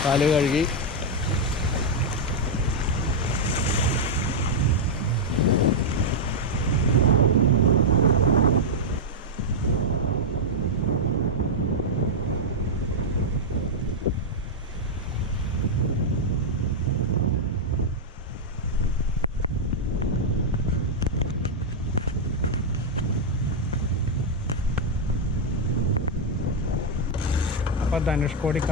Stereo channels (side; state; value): both; normal; correlation -0.03